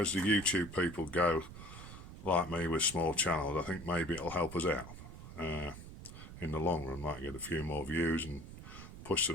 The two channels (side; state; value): right; noise; rumble, 13 dB below the sound